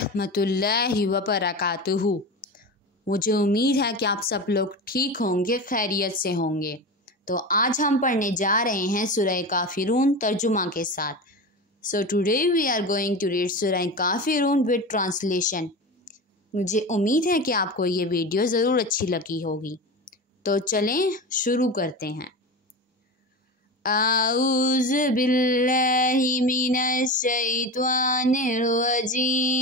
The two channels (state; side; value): normal; both; correlation 0.26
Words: वबरकातुहू। मुझे उम्मीद है कि आप सब लोग ठीक होंगे, खैरियत से होंगे। तो आज हम पढ़ने जा रहे हैं सूरह काफिरून तर्जुमा के साथ। So today we are going to read सूरह काफिरून विद ट्रांसलेशन। मुझे उम्मीद है कि आपको ये वीडियो ज़रूर अच्छी लगी होगी। तो चलें शुरू करते हैं। आऊज़ु बिल्लाहि मिनश शैतानिर रजीम।